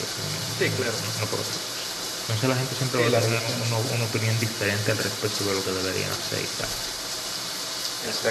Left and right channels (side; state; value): both; identical; correlation 1.00